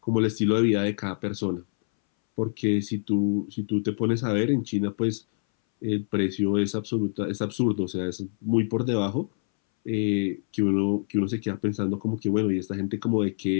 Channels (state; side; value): silent; right; 61 dB below the other